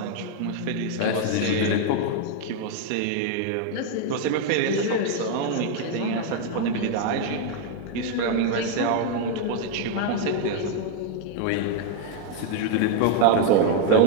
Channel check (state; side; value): different; both; correlation 0.01